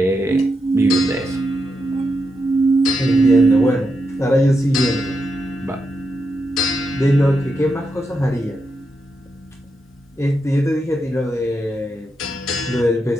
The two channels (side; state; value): both; normal; correlation 0.85